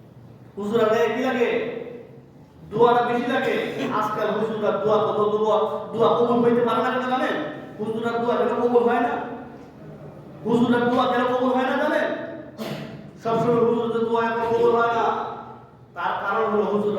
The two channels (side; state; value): both; identical; correlation 1.00